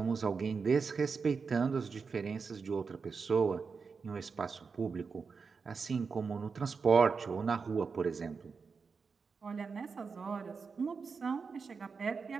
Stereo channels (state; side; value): quieter; left; 5.2 dB